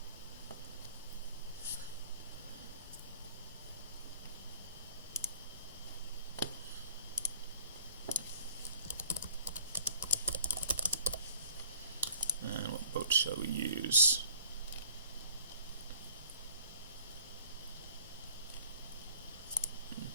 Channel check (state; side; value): inverted; both; correlation -0.53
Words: And what boat shall we use?